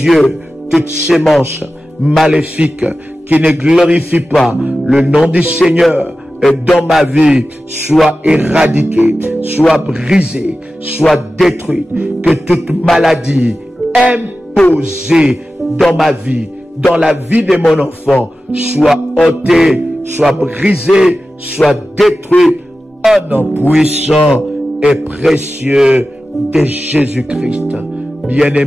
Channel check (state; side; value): normal; both; correlation 0.94